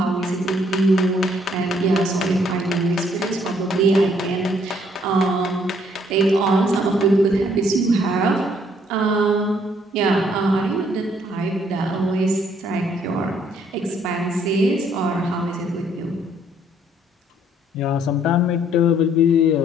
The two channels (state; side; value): normal; both; correlation 0.65